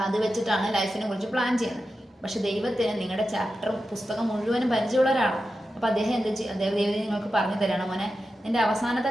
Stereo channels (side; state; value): both; normal; correlation 0.91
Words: അത് വെച്ചിട്ടാണ് ലൈഫിനെ കുറിച്ച് പ്ലാൻ ചെയ്യുന്നത്. പക്ഷെ ദൈവത്തിന് നിങ്ങളുടെ പുസ്തകം മുഴുവനും പരിചയമുള്ള ഒരാളാണ്. അപ്പോൾ അദ്ദേഹം ദൈവം നിങ്ങൾക്ക് പറഞ്ഞു തരണം, മോനെ എൻ്റെ